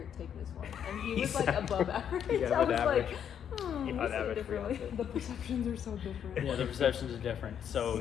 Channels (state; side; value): quieter; right; 8.7 dB